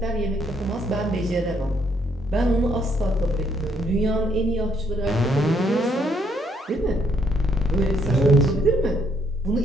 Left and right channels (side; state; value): both; normal; correlation 0.71